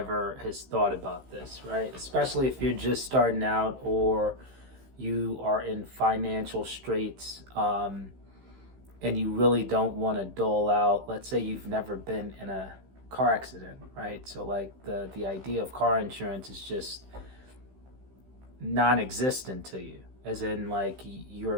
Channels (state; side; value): late; left; 15 ms